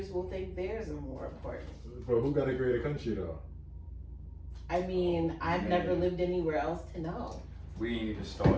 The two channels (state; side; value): identical; both; correlation 1.00